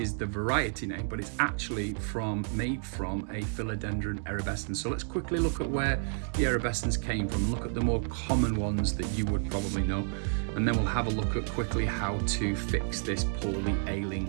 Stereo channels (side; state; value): left; silent; 57 dB below the other